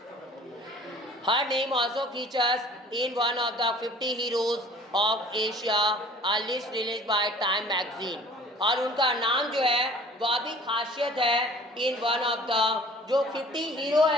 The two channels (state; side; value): normal; both; correlation 0.49